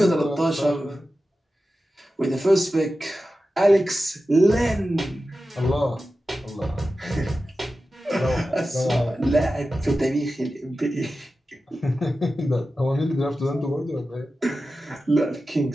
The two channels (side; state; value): both; normal; correlation 0.93